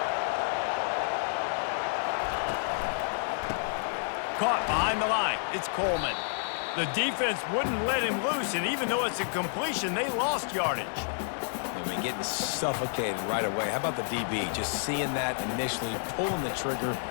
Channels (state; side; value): silent; right; digital silence